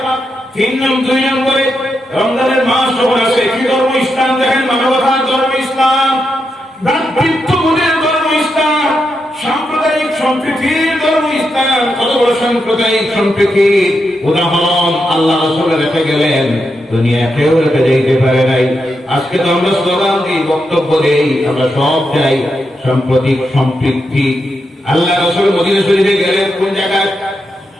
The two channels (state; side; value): normal; both; correlation 0.85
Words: 2 নম্বরে রমজানের মাস যখন আসে, কি ধর্ম? ইসলাম। দেখেন মানবতার ধর্ম ইসলাম, ভ্রাতৃত্ববোধের ধর্ম ইসলাম, সাম্প্রদায়িক সম্প্রীতির ধর্ম ইসলাম। কত বড় সাম্প্রদায়িক সম্প্রীতির উদাহরণ আল্লাহ রাসূল রেখে গেলেন, দুনিয়া কেউ রেখে যেতে পারে নাই। আজকে তো আমরা স্লোগান দিই, বক্তব্য দেই, আমরা সব চাই সাম্প্রতিক সম্প্রীতি। আল্লাহ রাসূল মদিনা শরীফে গেলেন, কোন জায়গায়?